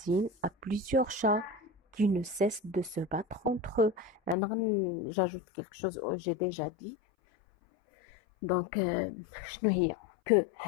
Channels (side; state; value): right; drops out; at 4.4 s